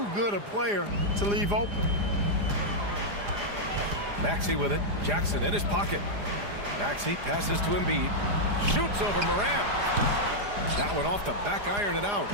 good a player to leave open. Maxey with it. Jackson in his pocket. Maxey passes to Embiid. Shoots over Morant. That one off the back iron and out.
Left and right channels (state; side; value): late; left; 4.9 ms